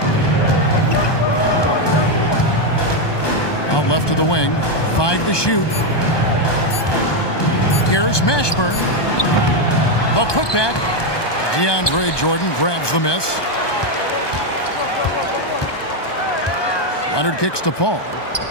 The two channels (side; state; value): right; late; 1.2 ms